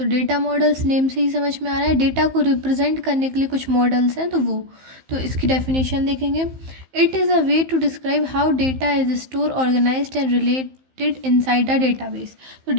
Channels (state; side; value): late; left; 15 ms